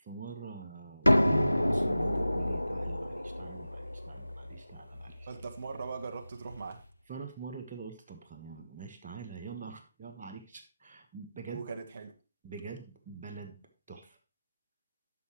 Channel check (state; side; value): inverted; both; correlation -0.94